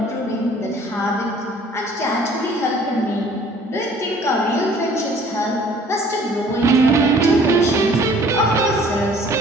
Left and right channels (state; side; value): normal; both; correlation 0.54